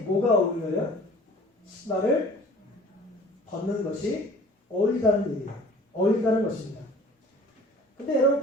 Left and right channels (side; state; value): both; normal; correlation 0.48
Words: 어울려요? 신발을 벗는 것이 어울리다는 얘기예요. 어울리다는 것입니다. 근데 여러분